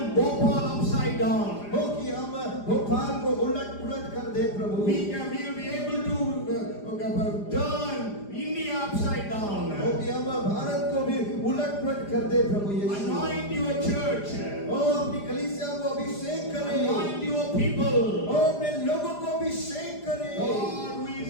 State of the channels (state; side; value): late; right; 4.9 ms